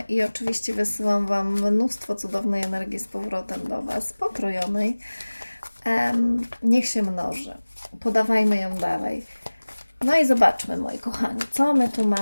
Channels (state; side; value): inverted; both; correlation -1.00